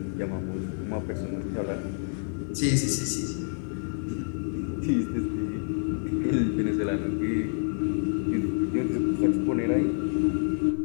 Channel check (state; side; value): silent; right; 59 dB below the other